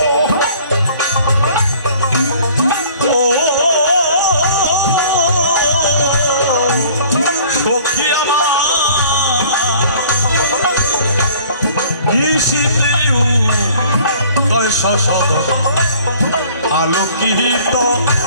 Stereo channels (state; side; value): inverted; both; correlation -0.52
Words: সখী আমার শশদ আলোকিত